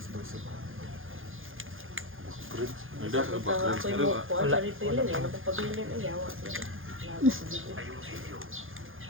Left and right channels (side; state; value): left; late; 0.59 ms